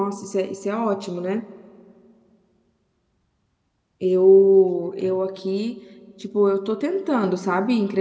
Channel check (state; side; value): identical; both; correlation 1.00